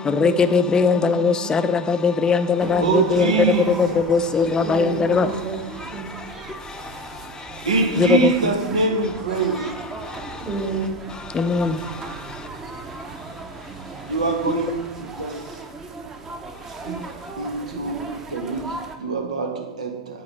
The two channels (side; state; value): both; normal; correlation 0.34